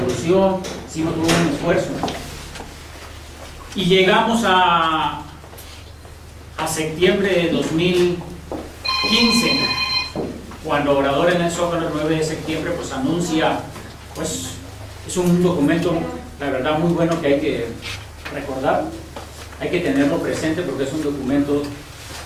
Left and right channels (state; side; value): identical; both; correlation 1.00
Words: hicimos todo un esfuerzo. Y llegamos a septiembre de 2015, cuando Obrador en el Zócalo, el 9 de septiembre, pues anuncia, pues es un documento, la verdad, muy bueno que hay que recordar, hay que tenerlo presente porque es un documento